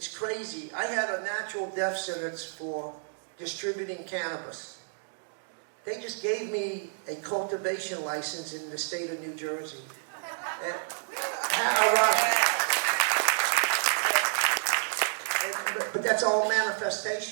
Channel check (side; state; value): left; silent; digital silence